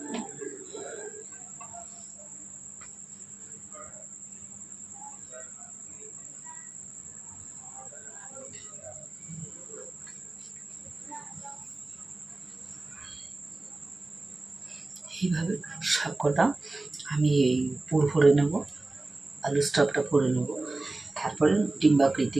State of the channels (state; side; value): quieter; left; 3.1 dB